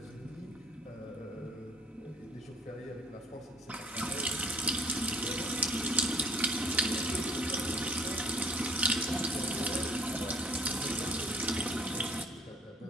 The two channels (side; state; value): both; normal; correlation 0.54